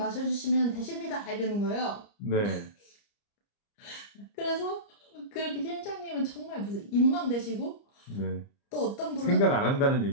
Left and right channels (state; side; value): late; right; 30 ms